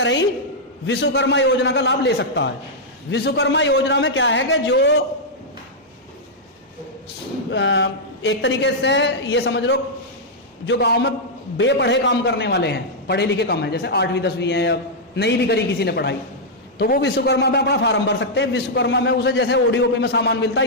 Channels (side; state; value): both; normal; correlation -0.06